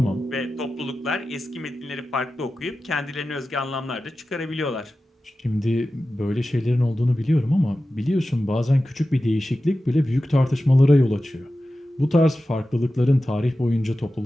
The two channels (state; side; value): normal; both; correlation 0.94